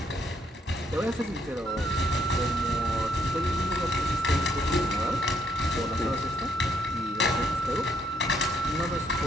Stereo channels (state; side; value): normal; both; correlation 0.71